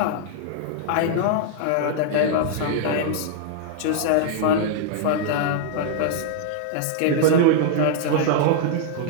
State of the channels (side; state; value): both; different; correlation -0.01